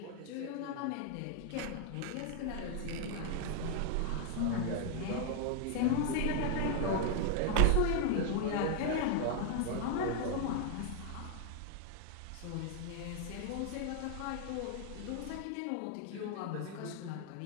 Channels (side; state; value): both; different; correlation 0.00